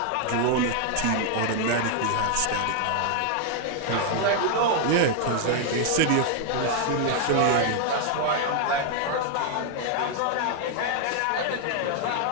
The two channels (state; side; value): different; both; correlation 0.00